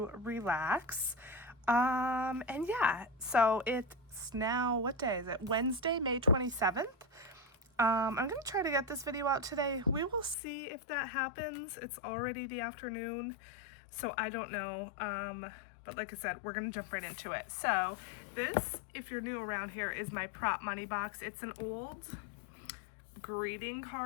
relax. And yeah, so it's now, what day is it? Wednesday, May 27th. I'm going to try to get this video out today. We will see if that happens. It's already the afternoon, so I don't know. But like I said, we're going to jump right into it. So this, if you're new around here, is my prop money box. It's an old greeting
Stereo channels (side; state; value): right; drops out; at 10.4 s